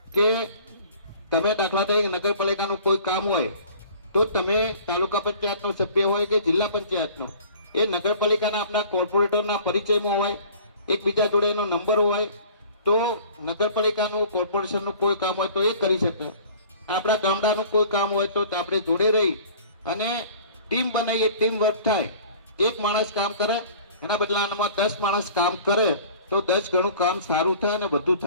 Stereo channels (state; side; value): inverted; both; correlation -0.48